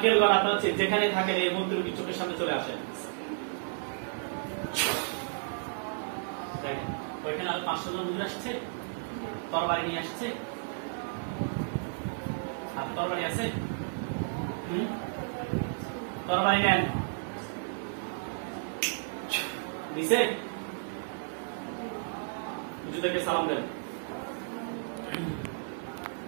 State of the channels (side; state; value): left; silent; digital silence